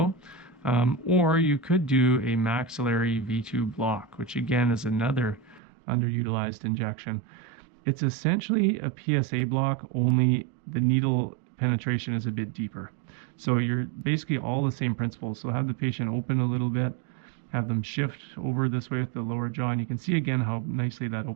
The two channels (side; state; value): left; drops out; at 5.6 s